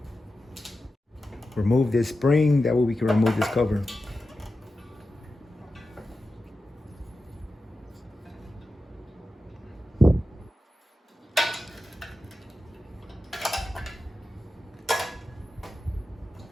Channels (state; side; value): normal; both; correlation 0.92